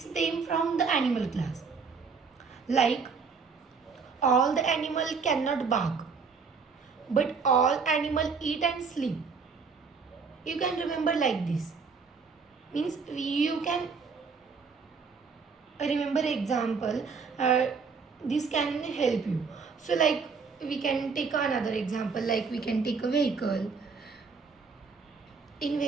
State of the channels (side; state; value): left; quieter; 5.2 dB